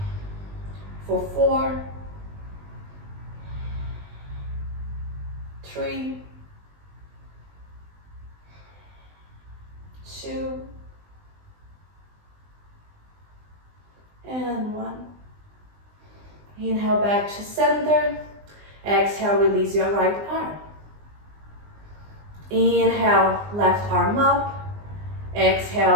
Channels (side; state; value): left; late; 20 ms